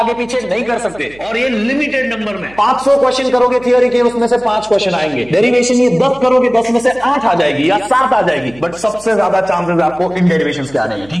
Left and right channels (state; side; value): noise; right; hum, 23 dB below the sound